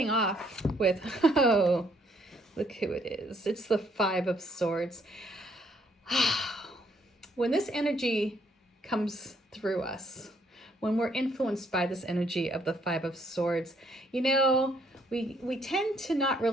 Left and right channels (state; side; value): normal; both; correlation 0.68